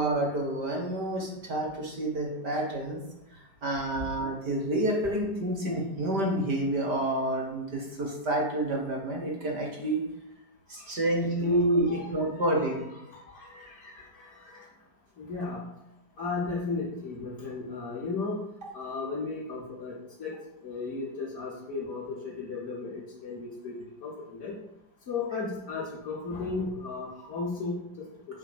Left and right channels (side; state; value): left; late; 5.1 ms